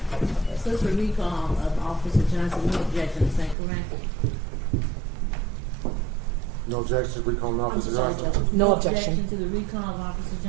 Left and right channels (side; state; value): left; drops out; at 3.6 s